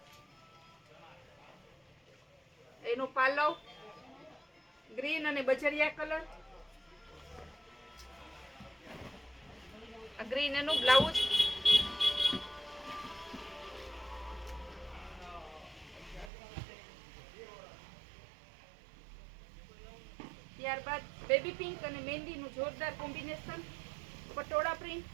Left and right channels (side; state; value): left; drops out; at 16.3 s